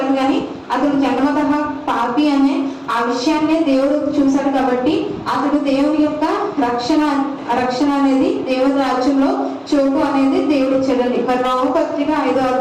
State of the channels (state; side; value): identical; both; correlation 1.00